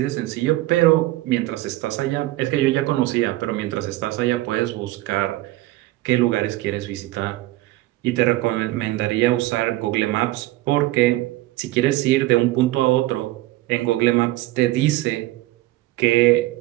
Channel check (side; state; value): left; quieter; 17.7 dB